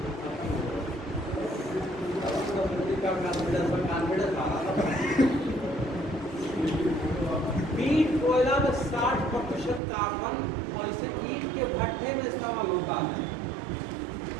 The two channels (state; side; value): drops out; left; at 9.8 s